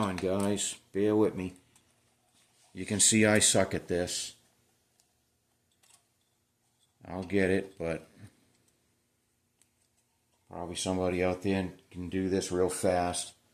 guys. Bear with me. You can see I suck at this. I'll get it, but probably somebody out there can do this real fast.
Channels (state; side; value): identical; both; correlation 1.00